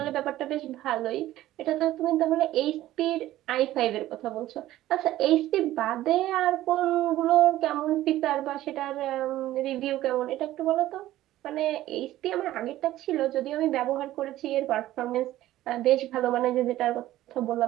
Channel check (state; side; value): quieter; left; 14.8 dB